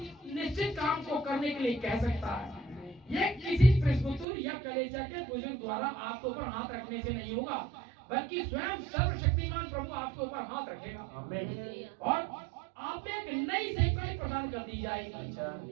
निश्चित काम को करने के लिए कह सकता है। ये किसी प्रेस्बिटर या कलीसिया के बुजुर्ग द्वारा आपके ऊपर हाथ रखने से नहीं होगा, बल्कि स्वयं सर्वशक्तिमान प्रभु आपके ऊपर हाथ रखेगा। आमीन। और आप एक नई सेवकाई प्रदान कर दी जाएगी। अच्छा।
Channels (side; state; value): left; drops out; at 4.2 s